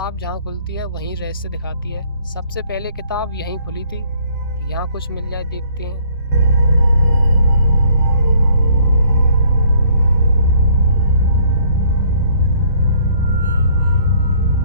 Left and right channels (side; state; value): both; inverted; correlation -0.60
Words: जहाँ खुलती है वहीं रहस्य दिखाती है। सबसे पहले किताब यहीं खुली थी, यहाँ कुछ मिल जाए देखते हैं।